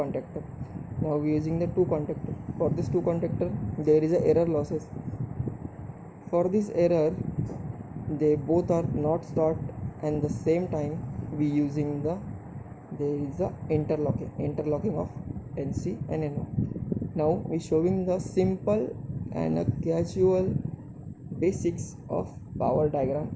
Now we are using the two contactor. For this two contactor there is a error losses. For this error they both are not start and the same time we using there is a interlocking of NC and NO. Now we showing the simple and a casual basics of power diagram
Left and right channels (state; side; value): identical; both; correlation 1.00